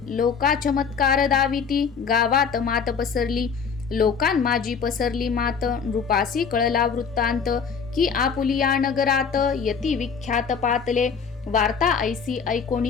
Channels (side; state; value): right; quieter; 6.2 dB